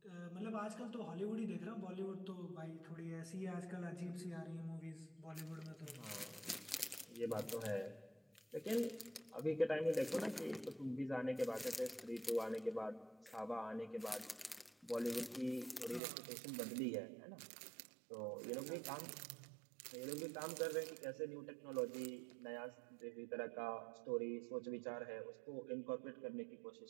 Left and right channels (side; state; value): left; drops out; at 16.0 s